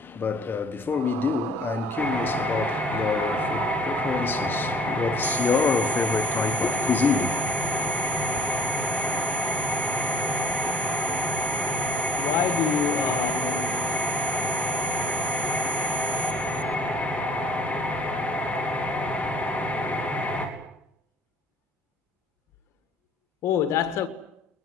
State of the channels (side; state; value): both; normal; correlation 0.52